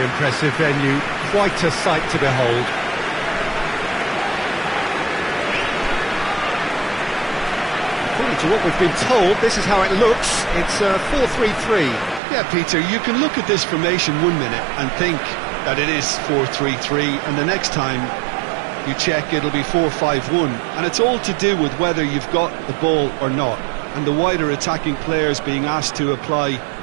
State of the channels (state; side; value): drops out; left; at 12.2 s